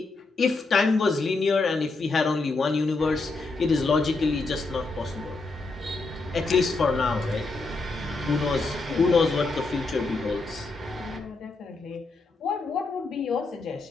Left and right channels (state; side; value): quieter; right; 3.6 dB